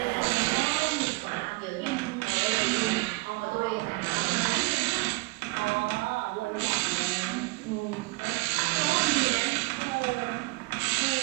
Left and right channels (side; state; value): left; quieter; 24.7 dB